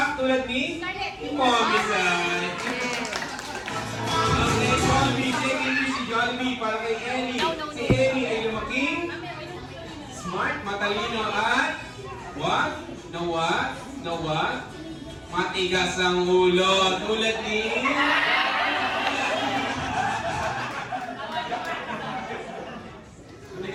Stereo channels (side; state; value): both; identical; correlation 1.00